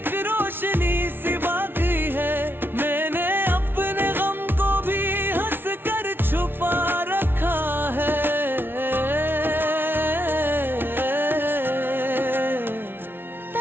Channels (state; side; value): late; left; 0.11 ms